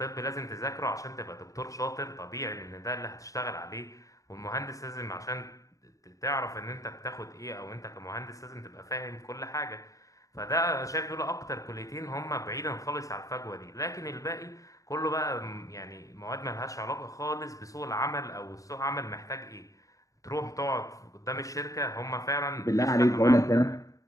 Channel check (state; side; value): late; right; 0.16 ms